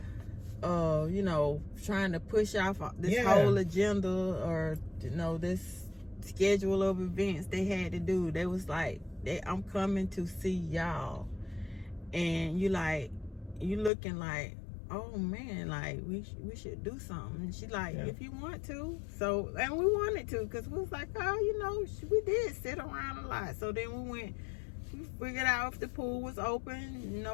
you know, trying to push off this whole agenda or, you know, this schedule of events they had to do. They was like, I'm coming to see y'all, and you looking like, oh man, like we should do something. And she like, if you want to. So, and we wanted to, because we was like, oh, you know, we did sit around a lot. So then we figured out if the pool was open, you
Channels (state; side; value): drops out; right; at 13.9 s